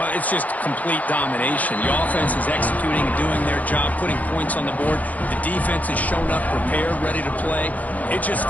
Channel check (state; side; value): late; right; 0.076 ms